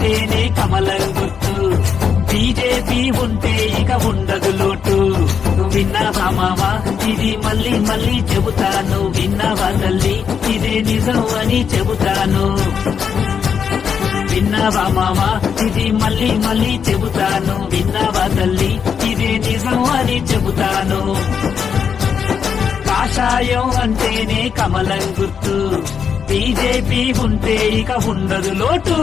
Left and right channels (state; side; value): quieter; right; 7.0 dB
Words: కమలం గుర్తు. బీజేపీ ఉంటే ఇక ఉండదు లోటు. నువ్వు విన్నావా మావా, ఇది మళ్ళీ మళ్ళీ చెబుతాను. విన్నావా తల్లి, ఇదే నిజం అని చెబుతాను. విన్నావా మావా, ఇది మళ్ళీ మళ్ళీ చెబుతాను. విన్నావా తల్లి, ఇదే నిజం అని చెబుతాను. కాషాయం అంటేనే కమలం గుర్తు. బీజేపీ ఉంటే ఇక ఉండదు లోటు.